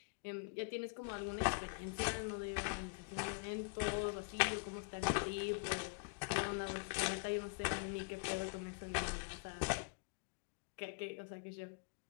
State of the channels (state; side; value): quieter; right; 35.2 dB